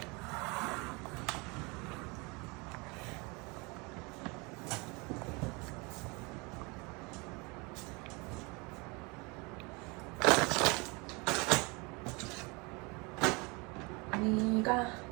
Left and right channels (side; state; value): left; quieter; 28.0 dB